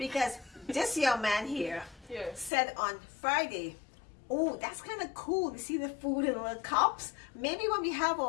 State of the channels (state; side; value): drops out; right; at 2.5 s